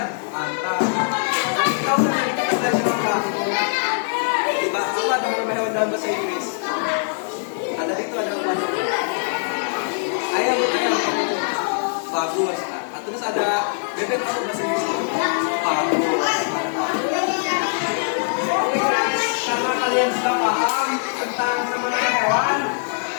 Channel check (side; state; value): right; silent; digital silence